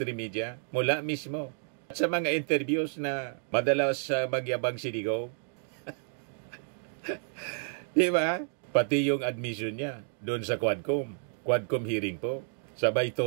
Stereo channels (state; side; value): silent; left; digital silence